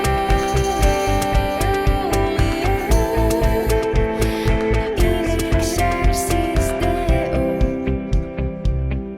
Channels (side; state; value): both; identical; correlation 1.00